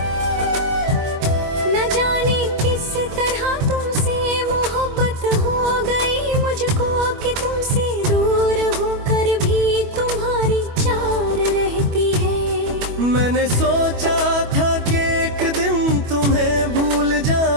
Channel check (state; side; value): late; left; 25 ms